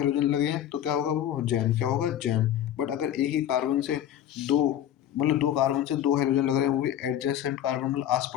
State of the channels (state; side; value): quieter; right; 11.1 dB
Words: लगे हैं तो क्या होगा, वो जैम, क्या होगा, जैम। बट अगर एक ही कार्बन से दो, मतलब दो कार्बन से दो हाइड्रोजन लग रहे हैं, वो भी एडजेसेंट कार्बन, मतलब आस